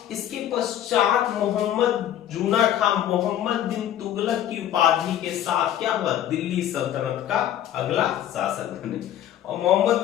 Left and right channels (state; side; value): quieter; right; 11.3 dB